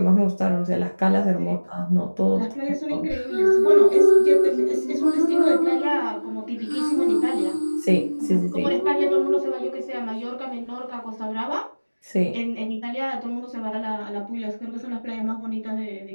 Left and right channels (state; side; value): inverted; both; correlation -1.00